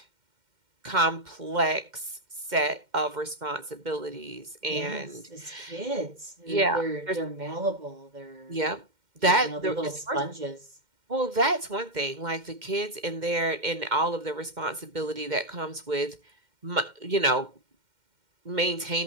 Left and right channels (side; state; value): left; late; 2.1 ms